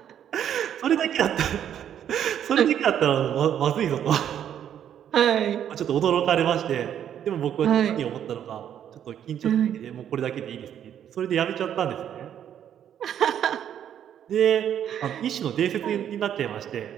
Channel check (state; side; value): quieter; left; 9.7 dB